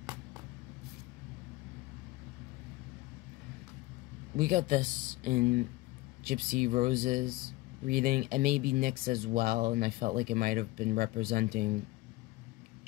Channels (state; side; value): quieter; right; 20.2 dB